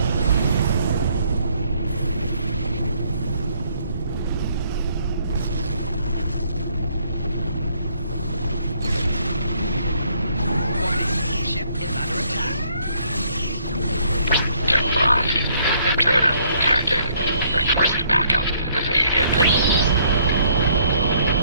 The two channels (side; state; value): both; inverted; correlation -0.66